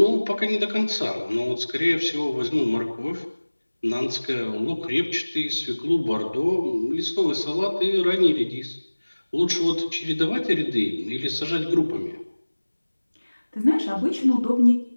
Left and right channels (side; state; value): both; inverted; correlation -1.00